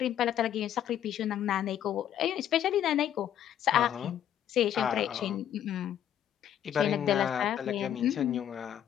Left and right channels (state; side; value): quieter; right; 10.4 dB